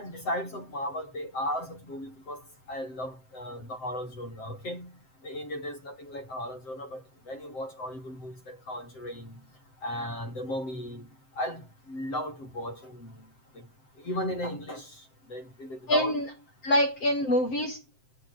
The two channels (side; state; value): right; late; 7.7 ms